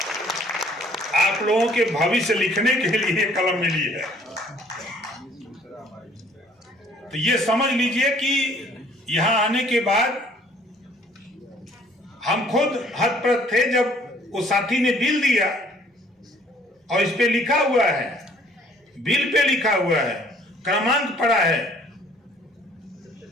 आप लोगों के भविष्य लिखने के लिए कलम मिली है। तो ये समझ लीजिए कि यहां आने के बाद हम खुद हतप्रभ थे जब वो साथी ने बिल दिया और इस पे लिखा हुआ है, बिल पे लिखा हुआ है, क्रमांक पड़ा है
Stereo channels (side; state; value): both; normal; correlation 0.58